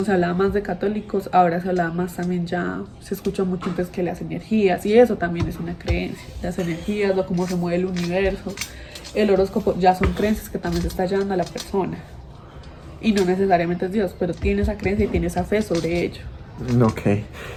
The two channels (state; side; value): identical; both; correlation 1.00